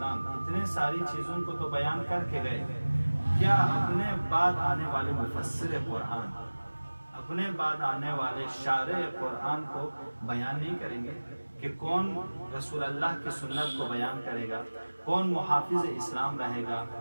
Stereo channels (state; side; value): inverted; both; correlation -1.00